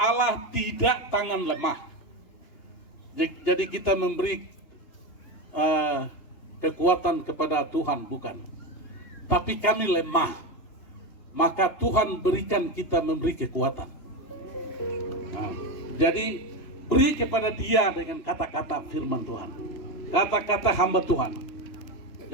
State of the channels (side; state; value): right; late; 2.9 ms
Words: tidak tangan lemah. Jadi kita memberi kekuatan kepada Tuhan, bukan. Tapi kami lemah, maka Tuhan berikan kita memberi kekuatan. Jadi beri kepada Dia dengan kata-kata firman Tuhan, kata-kata hamba Tuhan.